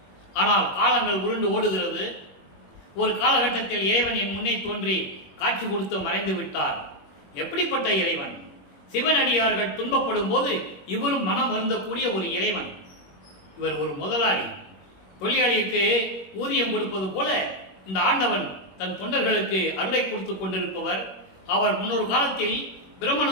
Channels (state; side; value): late; right; 21 ms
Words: ஆனால் காலங்கள் உருண்டு ஓடுகிறது. ஒரு காலகட்டத்தில் இறைவன் என் முன்னே தோன்றி காட்சி கொடுத்து மறைந்து விட்டார். எப்படிப்பட்ட இறைவன்! சிவனடியார்கள் துன்பப்படும் போது இவரும் மனம் வருந்தக்கூடிய ஒரு இறைவன். இவர் ஒரு முதலாளி. தொழிலாளிக்கு ஊதியம் கொடுப்பது போல இந்த ஆண்டவன் தன் தொண்டர்களுக்கு அருளை கொடுத்து கொண்டிருப்பவர். அவர் முன்னொரு காலத்தில்